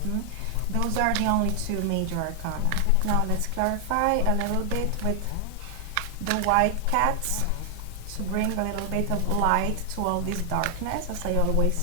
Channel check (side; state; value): both; different; correlation 0.00